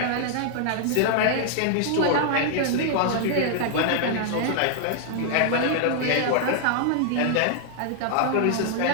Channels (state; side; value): different; both; correlation 0.00